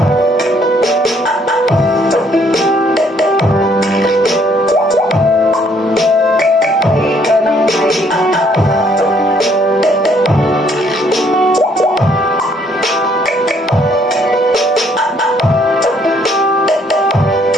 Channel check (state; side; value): normal; both; correlation 0.66